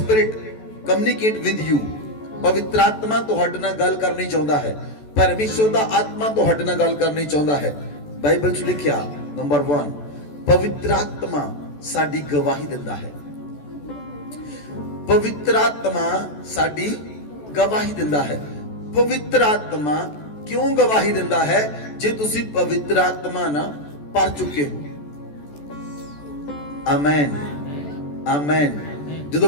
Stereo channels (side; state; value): right; late; 14 ms